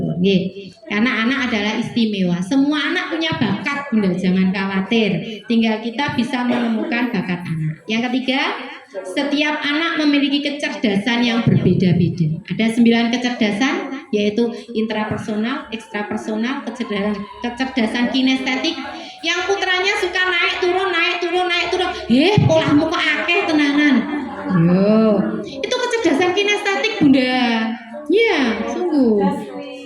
nggih. Karena anak adalah istimewa. Semua anak punya bakat Bunda, jangan khawatir. Tinggal kita bisa menemukan bakat anak. Yang ketiga, setiap anak memiliki kecerdasan yang berbeda-beda. Ada 9 kecerdasan, yaitu intrapersonal, ekstrapersonal, kecerdasan kinestetik. Yang putranya suka naik turun. Polahmu kok akeh tenanan. Yo, itu kecerdasan kinestetik Bunda. Ya, sungguh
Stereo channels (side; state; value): both; identical; correlation 1.00